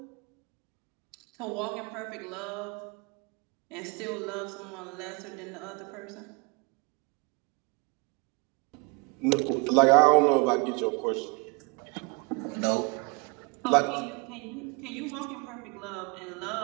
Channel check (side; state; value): left; quieter; 31.1 dB